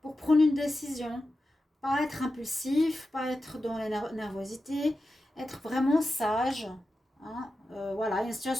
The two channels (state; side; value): normal; both; correlation 0.92